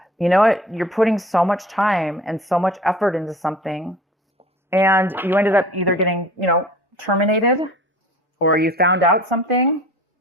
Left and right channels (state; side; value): normal; both; correlation 0.43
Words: you know what, you're putting so much time and so much effort into something, and you ended up either getting, you know, terminated, or you found out something,